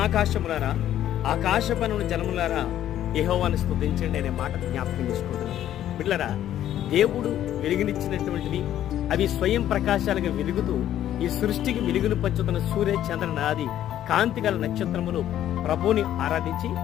ఆకాశపనుల జలములారా యెహోవాను స్తుతించండి అనే మాట జ్ఞాపకం చేసుకుంటున్నాం. బిడ్డలారా, దేవుడు వెలుగునిచ్చినటువంటివి అవి స్వయం ప్రకాశాలుగా వెలుగుతూ ఈ సృష్టికి వెలుగును పంచుతున్న సూర్య చంద్ర నాది కాంతిగల నక్షత్రములు ప్రభువుని ఆరాధించి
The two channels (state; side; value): quieter; right; 11.7 dB